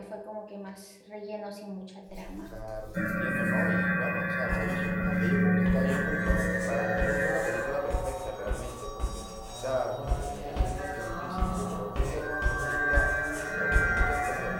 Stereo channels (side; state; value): both; identical; correlation 1.00